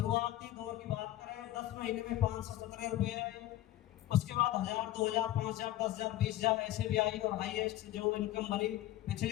दौर की बात करें, 10 महीने में 517 रुपये आए, उसके बाद 1000, 2000, 5000, 10,000, 20,000 ऐसे भी आई, और हाईएस्ट जो इनकम बनी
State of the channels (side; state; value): right; quieter; 14.3 dB